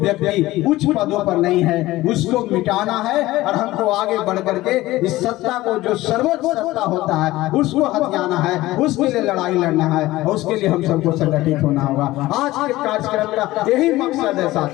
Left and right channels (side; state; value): right; quieter; 17.5 dB